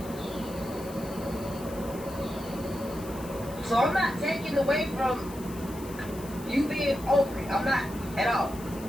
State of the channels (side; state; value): left; noise; hiss, 17 dB below the sound